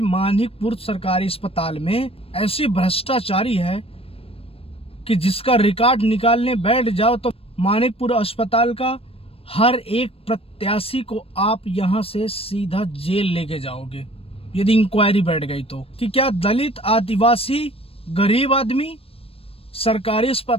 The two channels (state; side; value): late; right; 0.28 ms